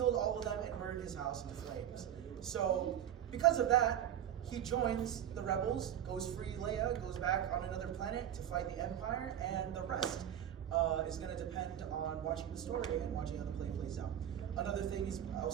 all of them and burned his house into flames. So because of that, he joins the rebels, goes free Leia, goes back on another planet to fight the Empire, and the rest is going to depend on watching the story and watching how the play plays out. Another thing is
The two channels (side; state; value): left; quieter; 10.4 dB